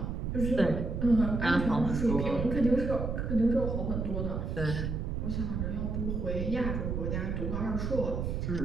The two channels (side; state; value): right; noise; rumble, 2 dB below the sound